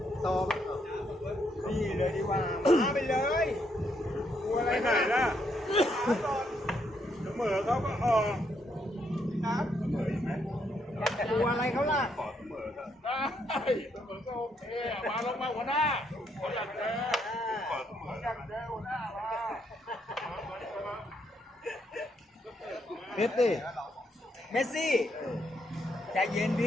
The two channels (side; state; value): both; normal; correlation 0.75